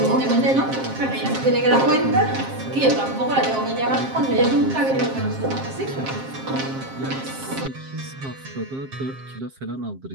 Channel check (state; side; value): late; left; 7.5 ms